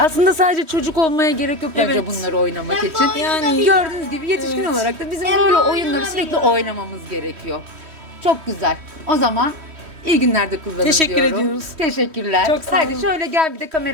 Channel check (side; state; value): left; late; 3.1 ms